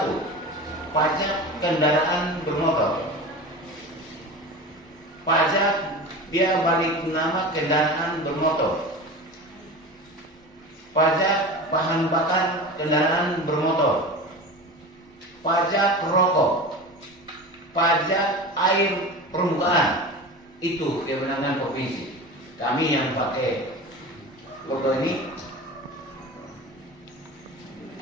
pajak kendaraan bermotor. Pajak dia balik nama kendaraan bermotor. Pajak bahan bakar kendaraan bermotor. Pajak rokok. Pajak air permukaan. Itu kewenangan provinsi. Kami yang pakai logo ini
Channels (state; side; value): normal; both; correlation 0.31